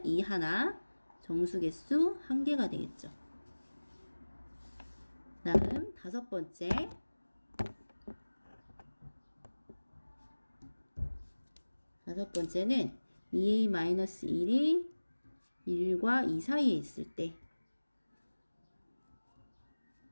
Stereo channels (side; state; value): both; inverted; correlation -1.00